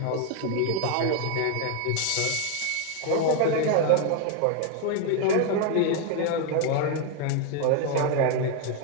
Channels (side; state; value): both; different; correlation 0.01